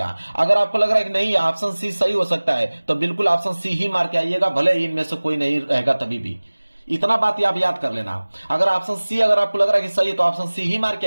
अगर आपको लग रहा है कि नहीं ऑप्शन सी सही हो सकता है तो बिल्कुल ऑप्शन सी ही मार के आइएगा, भले ही इनमें से कोई नहीं रहेगा तभी भी। इतना बात आप याद कर लेना, अगर ऑप्शन सी अगर आपको लग रहा है कि सही है तो ऑप्शन सी ही मार के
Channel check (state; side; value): inverted; both; correlation -1.00